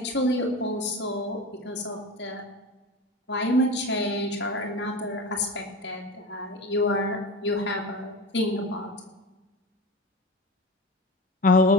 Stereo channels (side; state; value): both; normal; correlation 0.29